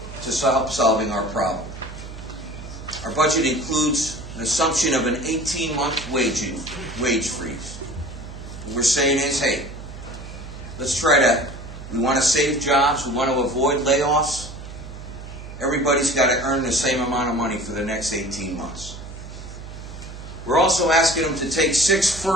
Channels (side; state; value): right; noise; hum, 12 dB below the sound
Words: to help solving our problem. Our budget includes an assumption of an 18-month wage freeze. What we're saying is, hey, we want to save jobs, we want to avoid layoffs. Everybody's got to earn the same amount of money for the next 18 months. We're also asking them to take 6